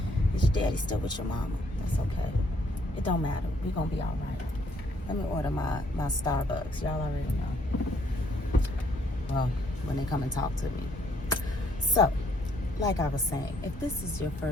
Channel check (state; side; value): normal; both; correlation 0.68